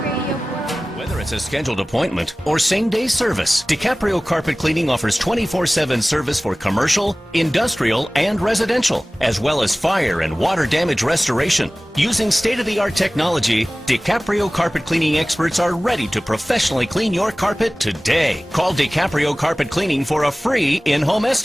Radio 45. Whether it's a scheduled appointment or same-day service, DiCaprio Carpet Cleaning offers 24/7 service for commercial, industrial, and residential, as well as fire and water damage restoration. Using state-of-the-art technology, DiCaprio Carpet Cleaning experts are ready to professionally clean your carpet today. Call DiCaprio Carpet Cleaning for a free in-home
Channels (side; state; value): both; normal; correlation 0.98